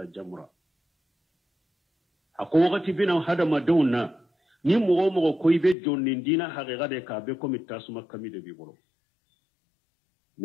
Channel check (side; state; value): right; drops out; at 5.8 s